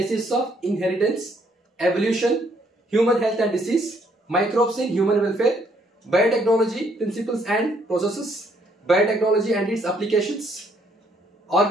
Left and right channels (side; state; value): both; normal; correlation 0.68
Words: of inheritance, evolution, human health and disease, microbes in human welfare, biotechnology, principles and processes, biotechnology and its applications,